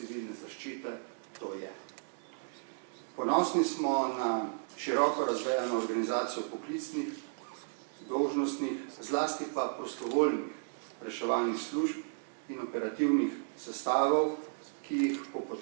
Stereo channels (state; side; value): silent; left; digital silence